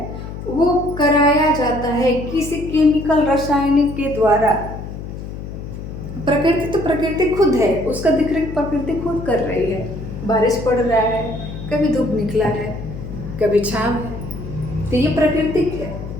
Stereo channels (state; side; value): noise; left; hum, 9 dB below the sound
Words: वो कराया जाता है किसी केमिकल रासायनिक के द्वारा। प्रकृति खुद है, उसका देखरेख प्रकृति खुद कर रही है। बारिश पड़ रहा है, कभी धूप निकला है, कभी छांव है, तो ये प्राकृतिक है।